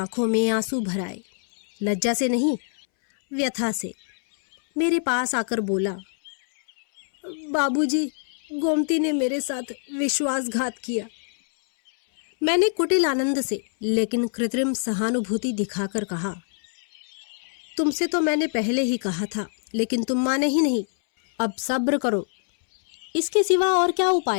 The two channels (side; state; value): right; silent; 62 dB below the other